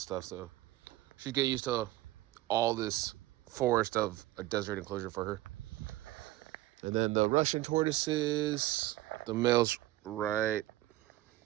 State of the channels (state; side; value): quieter; left; 16.8 dB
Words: stuff, so she'd get used to all this forest of a desert enclosure for her. And then the Russian tortoises, the male's right